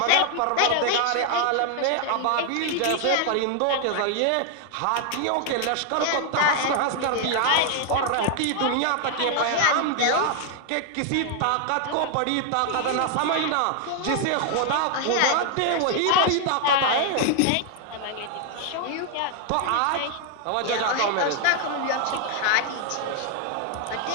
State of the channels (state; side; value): different; both; correlation 0.00